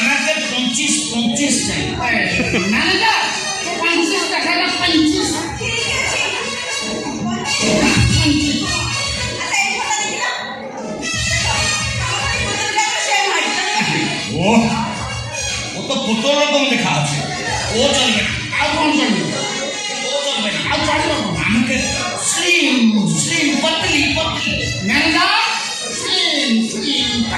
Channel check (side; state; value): both; identical; correlation 1.00